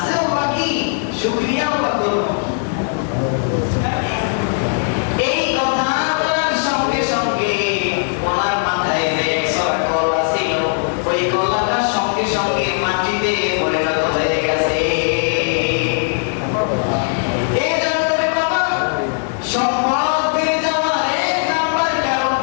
বাকি, শুকরিয়াও বা করবো। এই কথা বলার সঙ্গে সঙ্গে ওনার মাথায় যে 100 কলা ছিল, ওই কলাটার সঙ্গে সঙ্গে মাটিতে পরিণত হয়ে গেছে। এই জন্য বাবা, সম্পদ বেড়ে যাওয়ার 1 নাম্বার কারণ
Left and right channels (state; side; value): silent; right; digital silence